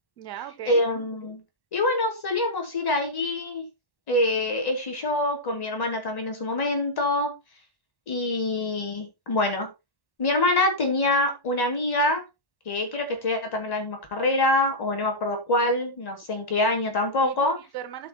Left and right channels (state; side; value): late; right; 1.1 ms